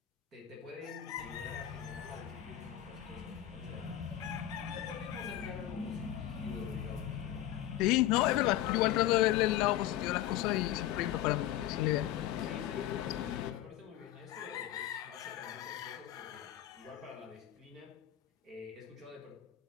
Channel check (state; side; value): quieter; right; 12.6 dB